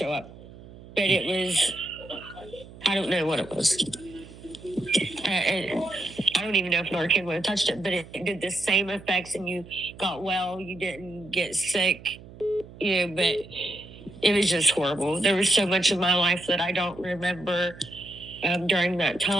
up. But it was, I don't know what it was. I don't even know if Narcan would have touched it, but it did the same effects, and you got well. You didn't get sick, but it was just horrible. There was so much of my life that I don't remember during that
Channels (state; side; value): noise; right; hum, 18 dB below the sound